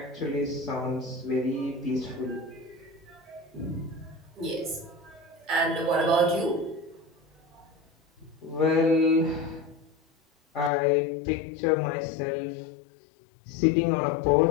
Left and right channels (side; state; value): right; drops out; at 10.7 s